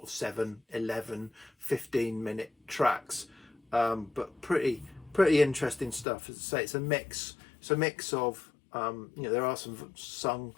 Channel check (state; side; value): drops out; right; at 6.1 s